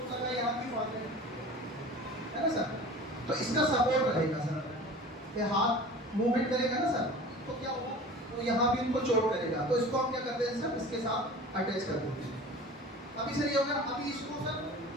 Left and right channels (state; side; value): normal; both; correlation 0.40